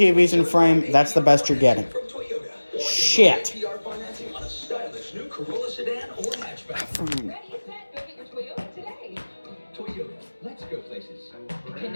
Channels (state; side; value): inverted; both; correlation -1.00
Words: in frame. That's the best you're getting. Shit. Let's go places.